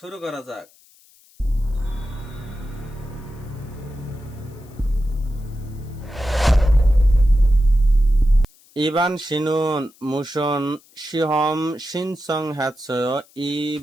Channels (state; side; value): noise; left; hiss, 29 dB below the sound